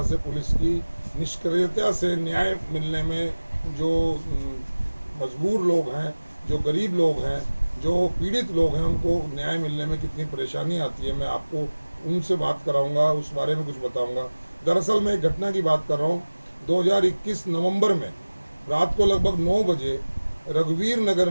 से पुलिस की निष्क्रियता से न्याय मिलने में जो मजबूर लोग हैं, जो गरीब लोग हैं, जो पीड़ित लोग हैं, उनको न्याय मिलने में कितनी परेशानी आती है। मैं आपको उनसे बात कराऊँगा, उस बारे में कुछ बताऊँगा। दरअसल मैं एक घटना की बात कर रहा हूँ। 2021 नवंबर में रात को लगभग 9 बजे रघुवीर नगर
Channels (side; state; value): both; inverted; correlation -1.00